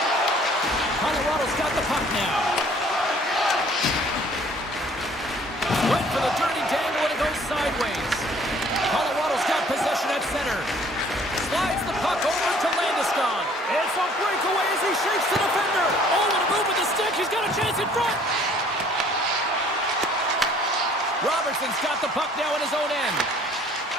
Colorado's got the puck now. Went for the dirty dangle and it goes sideways. Colorado's got possession at center. Slides the puck over to Landeskog. It's a breakaway as he shakes the defender. Oh, what a move with the stick. He's got a chance in front. Robertson's got the puck now in his own end.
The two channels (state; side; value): normal; both; correlation 0.56